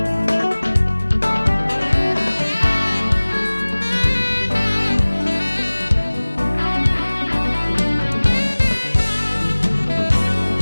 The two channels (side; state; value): both; inverted; correlation -1.00